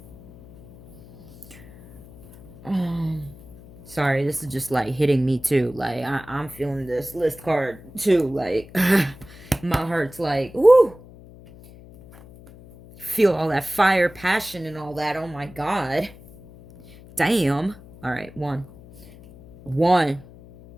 Sorry, this is just like hitting me too. Like I'm feeling this list card too. Like my heart's like, woo. Feel all that fire, passion, and all that. Oh my god. Damn. All right, one.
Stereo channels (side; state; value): left; noise; hum, 20 dB below the sound